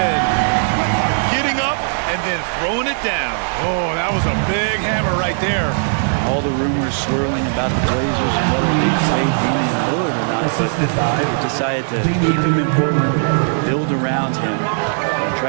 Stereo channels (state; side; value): silent; left; 60 dB below the other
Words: Getting up and then throwing it down. Oh, that was a big hammer right there. All the rumors swirling about the Blazers and whether they trade Damian Lillard or not, but they decided to keep him in Portland, build around him, and